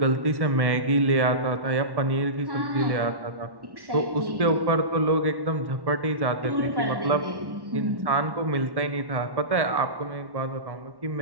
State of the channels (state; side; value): late; left; 1.1 ms